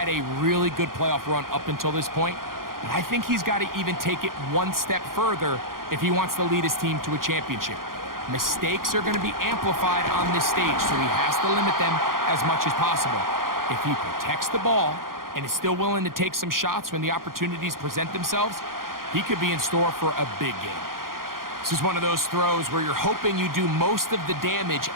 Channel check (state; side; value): late; left; 0.91 ms